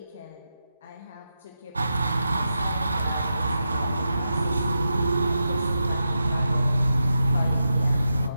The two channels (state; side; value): inverted; both; correlation -0.88